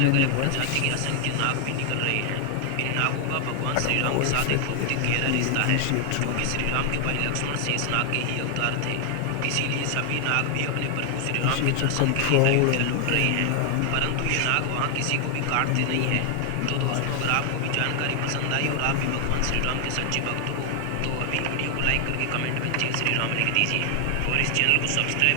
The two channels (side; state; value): both; different; correlation 0.00